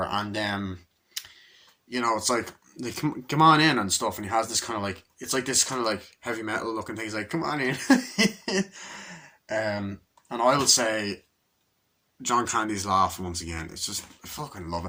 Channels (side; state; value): both; identical; correlation 1.00